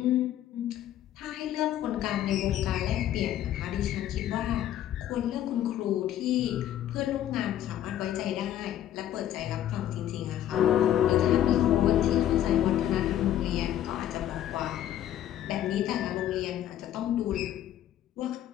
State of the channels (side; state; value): right; quieter; 11.8 dB